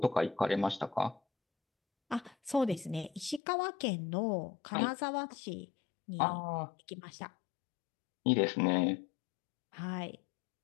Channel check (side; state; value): right; drops out; at 3.4 s